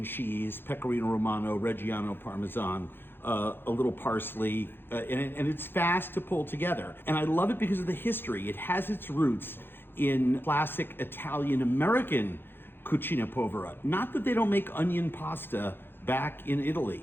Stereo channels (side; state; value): right; late; 0.10 ms